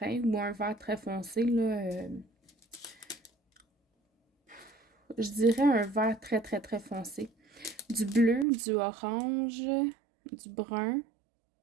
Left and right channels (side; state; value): left; drops out; at 8.5 s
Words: ou un vert très foncé, là, je dirais un vert très très très foncé. Du bleu, du orange, du brun,